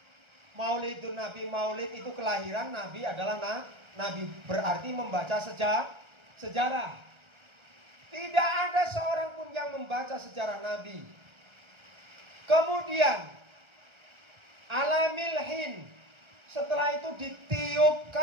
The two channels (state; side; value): late; left; 1.3 ms